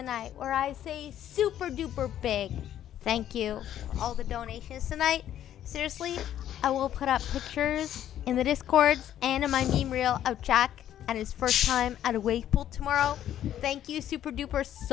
night where I say super duper big thank you for all the donations tonight. Seriously, I will put up pictures in the Discords and in my meme reel of Jack at his first time at a wave pool tomorrow. Thank you super duper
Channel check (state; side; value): quieter; right; 11.3 dB